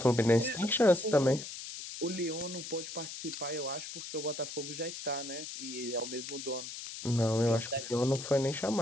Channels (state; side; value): noise; left; hiss, 9 dB below the sound